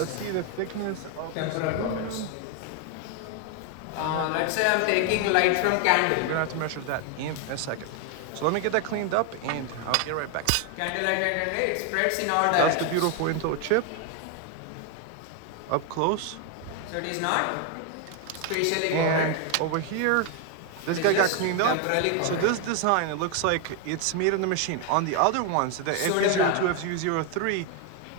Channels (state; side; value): different; both; correlation 0.01